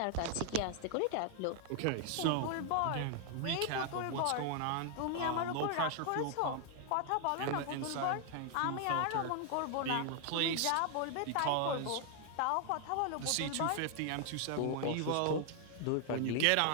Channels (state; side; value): different; both; correlation 0.00